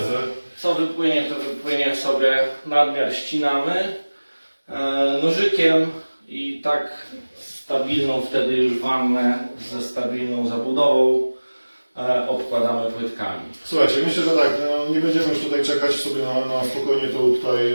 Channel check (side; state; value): both; inverted; correlation -1.00